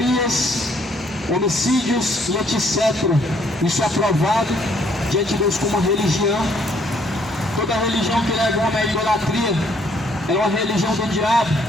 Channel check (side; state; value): both; normal; correlation 0.66